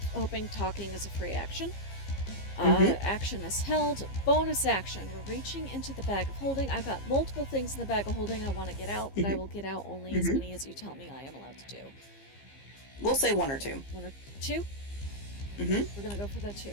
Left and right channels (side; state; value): right; late; 15 ms